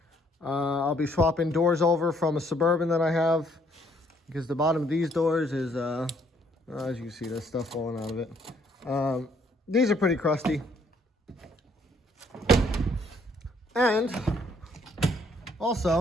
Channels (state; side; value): normal; both; correlation 0.66